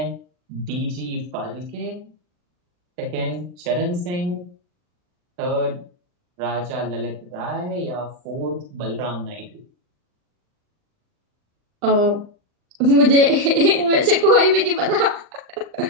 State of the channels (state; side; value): late; left; 39 ms